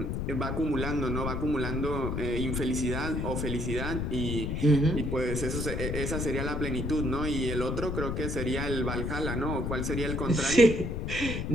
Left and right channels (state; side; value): noise; left; rumble, 2 dB below the sound